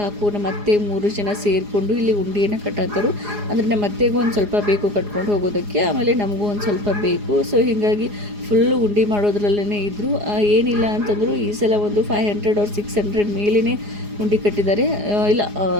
ಕಾಕು ನಮ್ಮ ಅತ್ತೆ 3 ಜನ ಸೇರಿಕೊಂಡು ಇಲ್ಲಿ ಉಂಡೆಯನ್ನು ಕಟ್ಟತ್ತರು. ಅಂದರೆ ನಮ್ಮ ಅತ್ತೆಗೂ ಒಂದು ಸ್ವಲ್ಪ ಬೇಕು ಕಟ್ಕೊಂಡು ಹೋಗೋದಕ್ಕೆ, ಆಮೇಲೆ ನಮಗೂ ಒಂದು ಸ್ವಲ್ಪ ಬೇಕು. ಸೊ ಹೀಗಾಗಿ ಫುಲ್ಲು ಉಂಡೆ ಮಾಡೋದ್ರಲ್ಲೇ ಇದ್ದರು. ಏನಿಲ್ಲ ಅಂತಂದರೂ ಈ ಸಲ ಒಂದು 500 or 600 ಮೇಲೇ ಉಂಡೆ ಕಟ್ಟಿದ್ದಾರೆ. ಇಲ್ಲ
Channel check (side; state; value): left; late; 4.9 ms